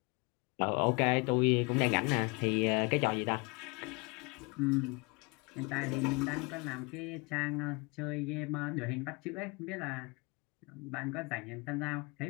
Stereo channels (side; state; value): right; quieter; 28.7 dB